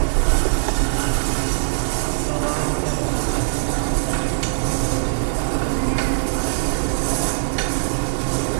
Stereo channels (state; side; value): silent; left; 65 dB below the other